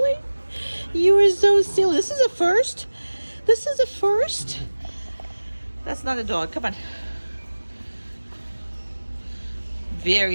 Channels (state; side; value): inverted; both; correlation -1.00